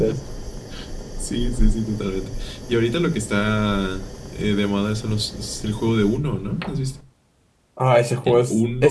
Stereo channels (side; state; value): both; identical; correlation 1.00